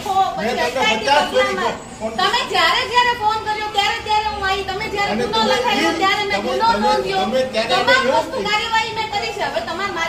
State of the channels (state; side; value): identical; both; correlation 1.00